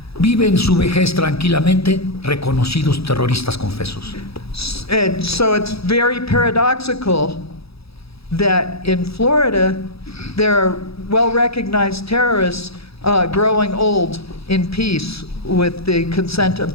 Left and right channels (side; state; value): right; late; 0.77 ms